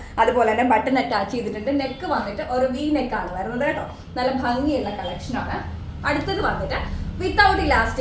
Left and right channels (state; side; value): identical; both; correlation 1.00